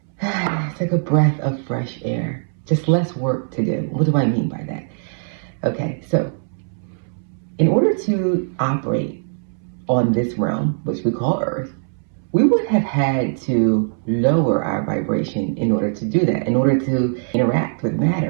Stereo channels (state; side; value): silent; left; 65 dB below the other